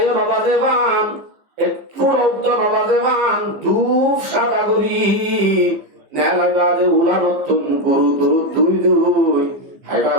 নবাজে বান একটু রক্ত নবাজে বান ধূপ সাদা করি নেলাই বাজে উলা নতুন গুরু দুরু দুই দুই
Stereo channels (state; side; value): late; left; 15 ms